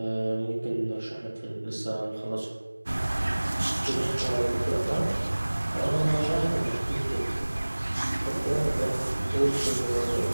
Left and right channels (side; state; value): both; inverted; correlation -1.00